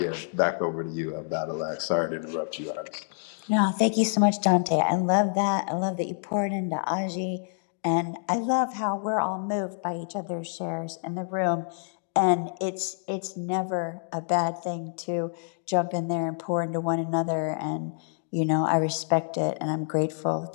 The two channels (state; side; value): silent; right; digital silence